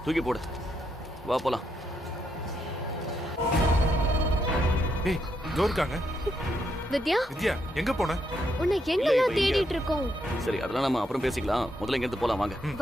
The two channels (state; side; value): normal; both; correlation 0.78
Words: தூக்கி போடு. வா போலாம். ஏய், இதோ இருக்காங்க. வித்யா வித்யா எங்க போன? உன்னை எங்கெல்லாம் தேடிட்டு இருக்கோம். சரி அதெல்லாம் நம்ம அப்புறம் பேசிக்கலாம். முதல்ல இங்க இருந்து போலாம் வாங்க.